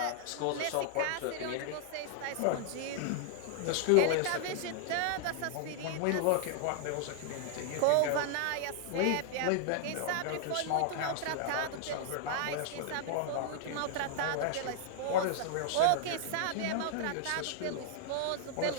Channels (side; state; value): both; different; correlation -0.01